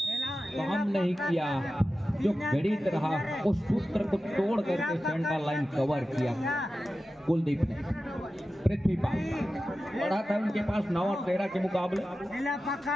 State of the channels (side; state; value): both; normal; correlation 0.93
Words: काम नहीं किया, जो गणित रहा उस सूत्र को तोड़ करके सेंटर लाइन कवर किया कुलदीप ने। पृथ्वीपाल बढ़ा था उनके पास 9 और 13 के मुकाबले